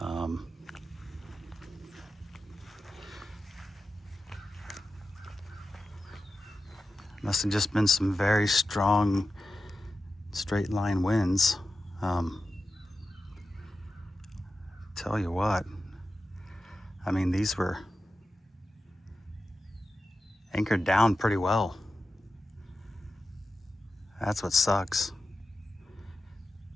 Must have just been some very strong straight line winds. Tell you what, I mean, these were anchored down pretty well. That's what sucks.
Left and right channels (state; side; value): normal; both; correlation 0.92